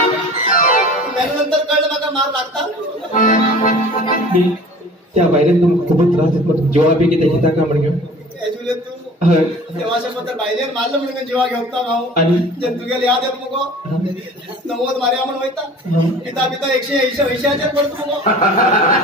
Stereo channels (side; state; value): both; normal; correlation 0.44